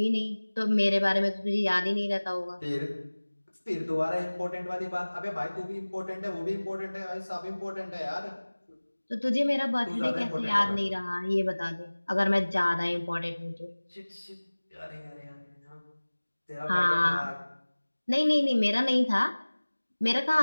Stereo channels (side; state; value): both; inverted; correlation -1.00